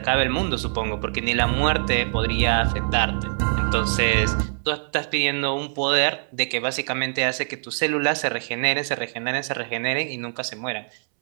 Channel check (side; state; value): left; silent; 63 dB below the other